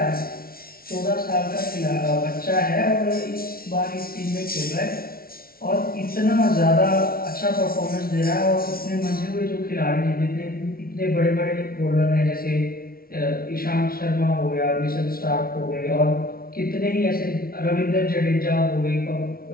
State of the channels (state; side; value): late; right; 0.43 ms